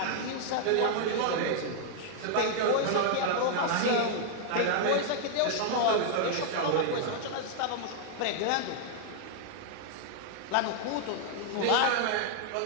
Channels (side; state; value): both; different; correlation 0.00